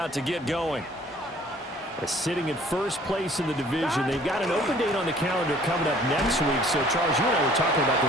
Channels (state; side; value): normal; both; correlation 0.55